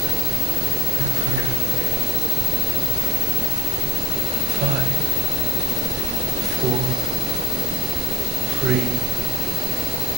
further away. 5, 4, 3,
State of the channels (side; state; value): both; normal; correlation 0.56